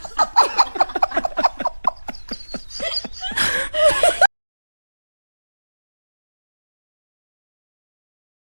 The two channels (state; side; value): inverted; both; correlation -1.00